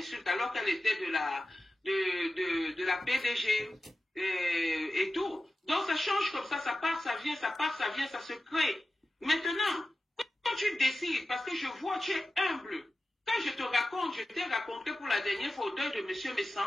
alors qu'elle était de la PDG et tout. Donc ça change comme ça part, ça vient, ça part, ça vient, ça se crée. Maintenant, quand tu décides, parce que je vois, tu es humble. Quand je te raconte, je t'ai raconté pour la dernière fois au deuil de M. Messan,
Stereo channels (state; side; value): normal; both; correlation 0.93